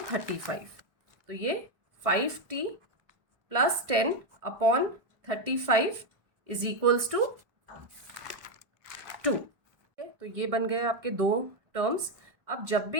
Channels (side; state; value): left; late; 1.7 ms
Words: 35। तो ये 5t plus 10 upon 35 is equals to 2। तो ये बन गए आपके दो टर्म्स। अब जब